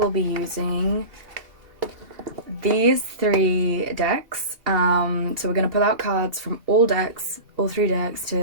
be using these three decks. So we're going to pull out cards from all three decks,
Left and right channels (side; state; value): left; late; 2.8 ms